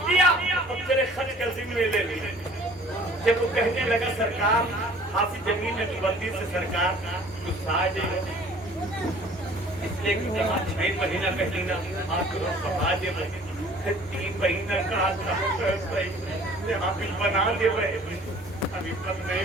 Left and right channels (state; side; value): normal; both; correlation 0.51